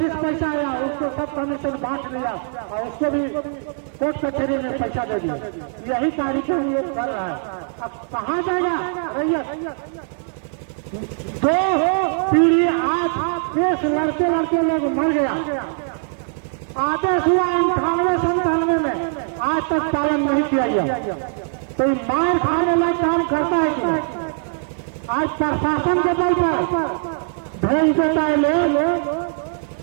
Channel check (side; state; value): left; silent; 58 dB below the other